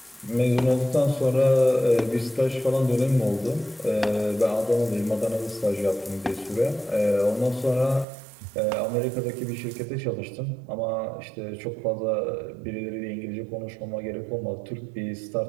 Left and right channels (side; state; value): left; drops out; at 8.1 s